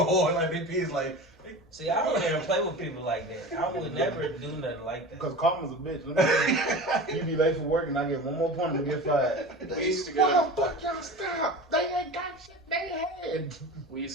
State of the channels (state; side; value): normal; both; correlation 0.33